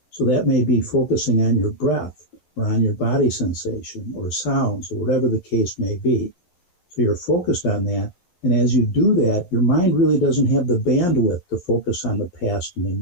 So that may be focusing on your breath, or on your body sensation or sounds or whatever the case may be. So you're focused on that. And as you do that, your mind really doesn't have the bandwidth to focus on the past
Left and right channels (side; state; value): right; late; 11 ms